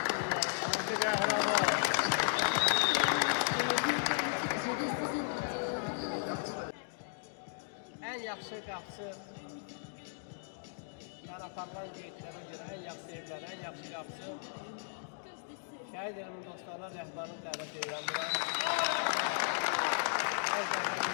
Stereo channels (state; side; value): silent; right; digital silence